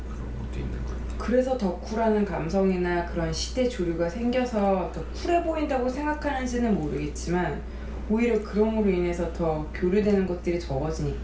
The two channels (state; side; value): identical; both; correlation 1.00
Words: 그런 것도 있는 것 같아요. 그래서 더 쿨하는 감성이나 그런 시대 조류가 생겨서 더 쿨해 보인다고 생각하는지는 모르겠지만 오히려 그럼으로 인해서 더 교류되는 것들이